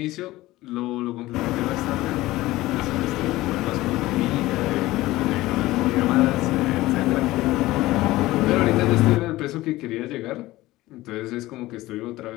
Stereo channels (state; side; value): quieter; right; 17.7 dB